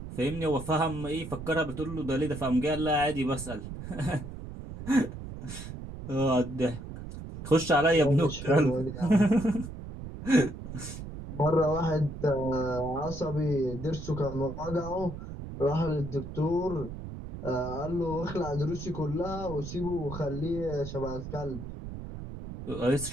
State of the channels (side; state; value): right; noise; rumble, 10 dB below the sound